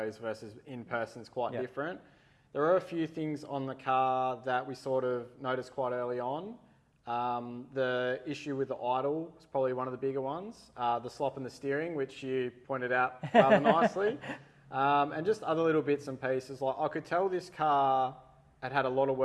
versus in person is quite different. There are a few things on the car that we sort of noticed quite early on. The issue with the idle is probably one of the bigger ones. The slop in the steering, which you pointed out rather nicely. And just other little bits and pieces. Like I could tell this car had a lot of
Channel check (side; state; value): both; identical; correlation 1.00